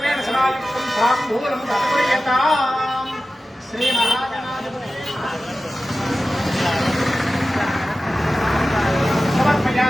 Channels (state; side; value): normal; both; correlation 0.94